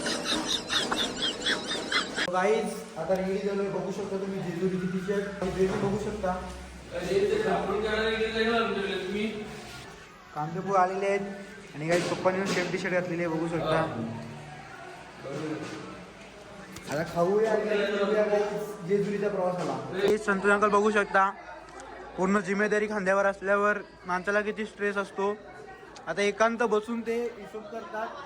गाईज आता रेडी झालोय. बघू शकता तुम्ही जेजुरीची टी-शर्ट बघू शकता. कांदेपूर आलेले आहेत आणि काही पप्पांनी सेम टी-शर्ट घातलेली आहे, बघू शकता. आता खाऊया जेजुरीच्या प्रवासाला. संतोष अंकल बघू शकता, पूर्ण जिम्मेदारी खांद्यावर असल्यावर माणसाला किती स्ट्रेस असतो. आता एकांत बसून ते हिशोब करतात.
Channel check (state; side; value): identical; both; correlation 1.00